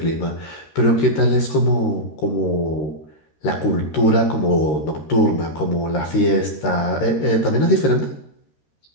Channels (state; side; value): late; right; 13 ms